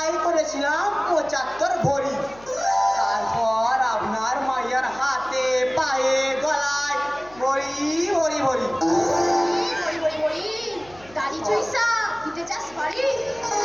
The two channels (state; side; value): noise; left; hum, 24 dB below the sound